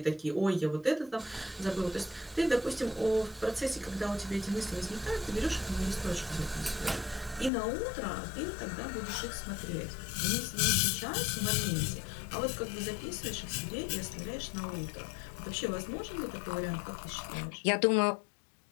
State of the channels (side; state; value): right; drops out; at 7.5 s